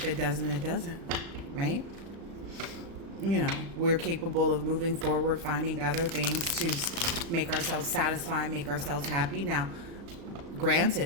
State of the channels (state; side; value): late; left; 36 ms